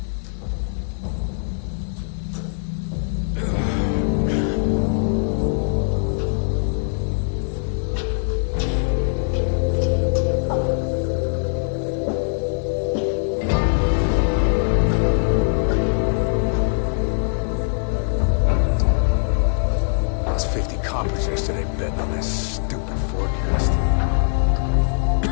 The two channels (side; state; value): right; silent; digital silence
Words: Lost 50 coppers yesterday betting on this stupid forecast.